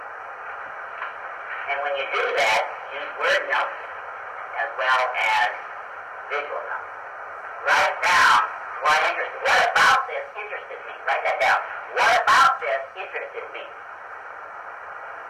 And when you do that, use word notes as well as visual notes. Write down what interested. What about this interested me? Write that down. What about this interested me?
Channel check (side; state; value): both; identical; correlation 1.00